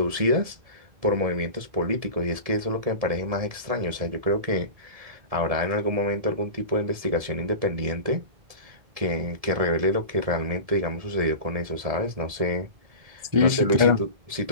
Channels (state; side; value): late; left; 1.7 ms